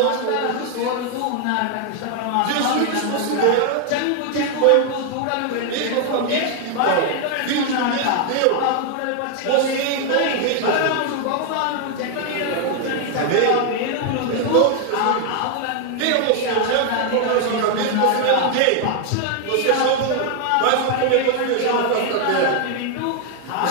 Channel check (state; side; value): different; both; correlation 0.01